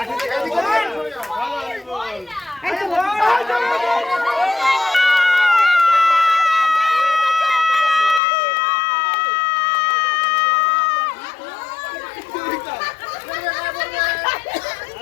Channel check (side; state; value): right; drops out; at 8.2 s